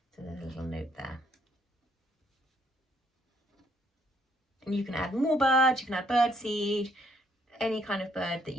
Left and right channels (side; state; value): both; normal; correlation 0.69